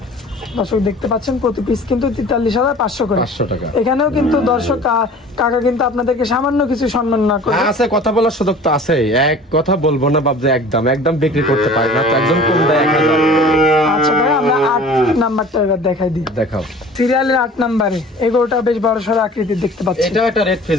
দর্শক দেখতে পাচ্ছেন প্রতি পিস কিন্তু 43,500 করে। 500 টাকা। এখানেও কিন্তু দর্শক কাকা কিন্তু আপনাদেরকে সামান্য কিছু সম্মান না করে আছে, কথা বলার সুযোগ তো আছে। এক কথা বলবো না বাপ যে একদম বিক্রি করতে পারি না, তো একজন কম দেয় 1000। আচ্ছা ভাই আমরা 8 নাম্বারটা এবার দেখাই দিই। দেখাও। সিরিয়ালের 8 নাম্বারে এই গরুটা বেশ বড় সড় আকৃতির দেখতে পাচ্ছি। এটাও একটা রেড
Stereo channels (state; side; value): normal; both; correlation 0.45